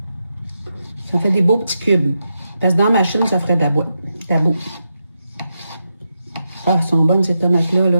Ça fait des beaux petits cubes. Parce que dans ma machine, ça ferait de la boîte. Tabou. Ah, elles sont bonnes, ces tomates-là,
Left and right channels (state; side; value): inverted; both; correlation -0.86